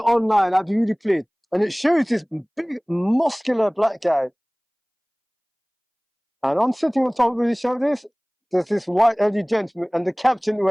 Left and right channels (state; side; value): identical; both; correlation 1.00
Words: I'd be really pleased. And it shows this big, muscular black guy. And I'm sitting on top of his shoulders. There's this white elderly gentleman, and the captain